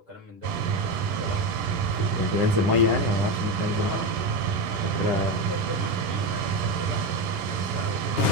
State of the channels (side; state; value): left; late; 10 ms